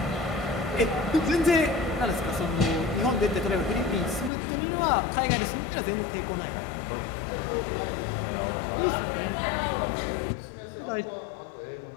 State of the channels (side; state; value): right; drops out; at 4.3 s